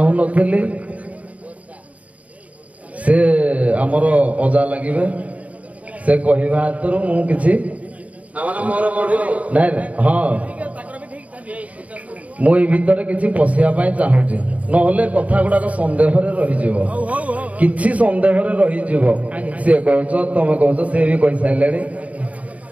ସେ ଆମର ଅଜା ଲାଗିବେ, ସେ କହିବା ହାତରୁ ମୁଁ କିଛି ନାଇଁ ହଁ ମୁଁ ଏଇ ଭିତରେ କିଛି ପଶିବା ପାଇଁ ଚାହୁଁଛି, ନହେଲେ କଥା ଗୁଡାକ ସନ୍ଦେହରେ ରହିଯିବ, କିଛି ସନ୍ଦେହରେ ରହିଯିବ। ସିଏ କହୁଛ ତମେ କହୁଛ, ସେ ବି କହିସାରିଲେଣି।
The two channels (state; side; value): late; left; 0.068 ms